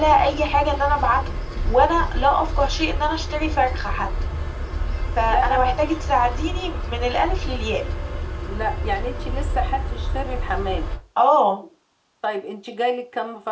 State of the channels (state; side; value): identical; both; correlation 1.00